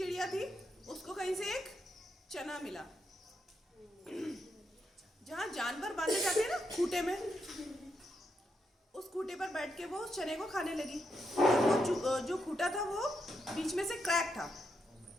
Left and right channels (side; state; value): both; normal; correlation 0.82